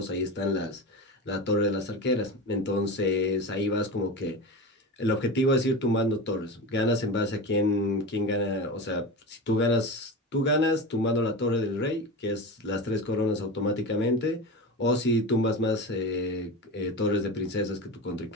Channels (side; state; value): both; normal; correlation 0.26